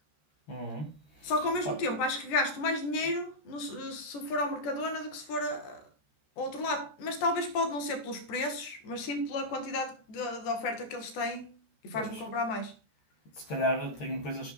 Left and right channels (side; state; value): right; late; 13 ms